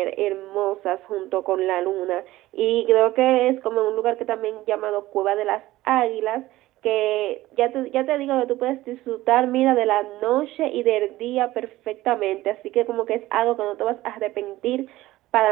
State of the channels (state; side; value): quieter; left; 16.8 dB